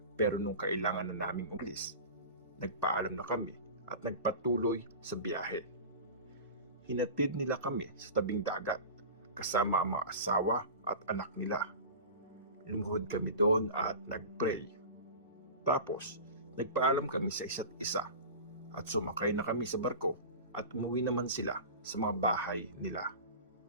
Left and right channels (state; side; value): inverted; both; correlation -0.33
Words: Pero nung kailangan na naming umalis, nagpaalam na kami at nagpatuloy sa biyahe. Hinatid nila kami sa tabing dagat kasama ang mga asawa at anak nila. Lumuhod kami doon at nagpray. Tapos, nagpaalam kami sa isa't isa at sumakay na kami sa barko at umuwi naman sila sa mga bahay nila.